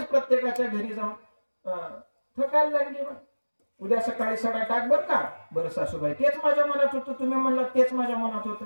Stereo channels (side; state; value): both; inverted; correlation -1.00